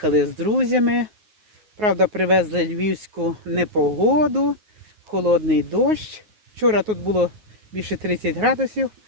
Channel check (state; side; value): late; left; 9.4 ms